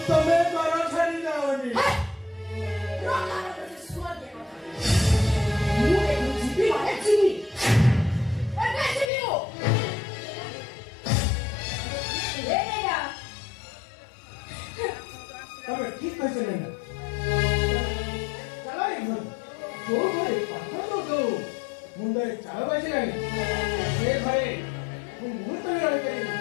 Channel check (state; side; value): drops out; right; at 9.1 s